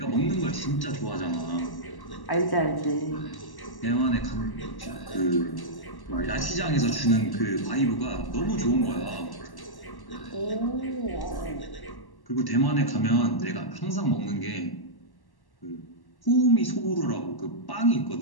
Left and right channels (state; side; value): late; right; 1.1 ms